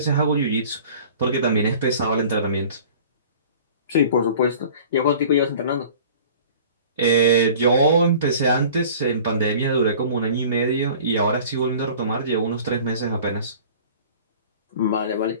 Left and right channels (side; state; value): both; inverted; correlation -0.46